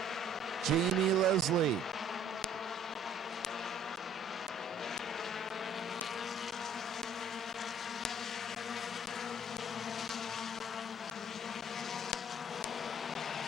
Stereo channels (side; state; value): both; normal; correlation 0.56